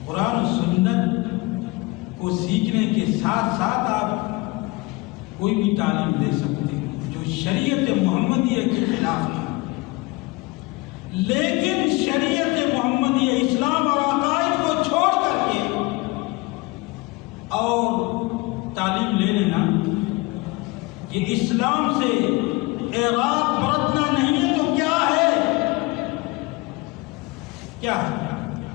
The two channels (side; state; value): right; quieter; 23.5 dB